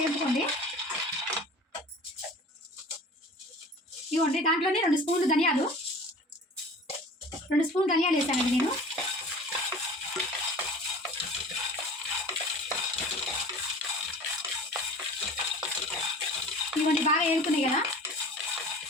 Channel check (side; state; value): both; normal; correlation 0.41